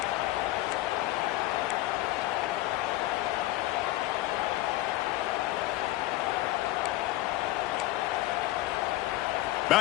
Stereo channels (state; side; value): quieter; right; 16.8 dB